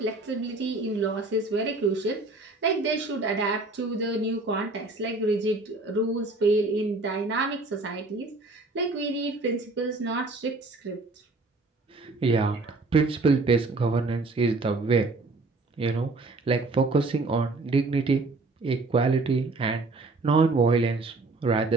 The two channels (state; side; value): quieter; left; 3.3 dB